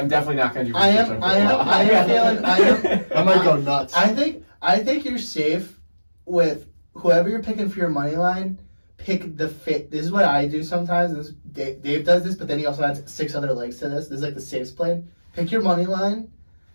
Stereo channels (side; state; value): both; inverted; correlation -1.00